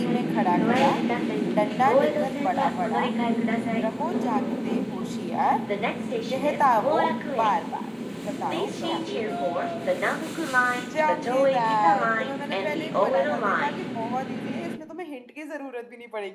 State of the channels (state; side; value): identical; both; correlation 1.00